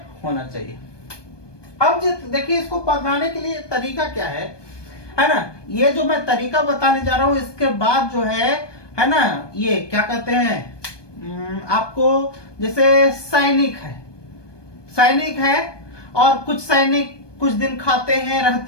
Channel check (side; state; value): right; late; 1.2 ms